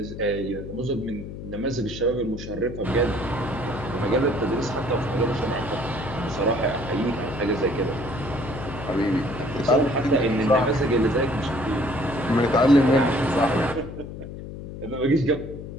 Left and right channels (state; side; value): noise; left; hum, 10 dB below the sound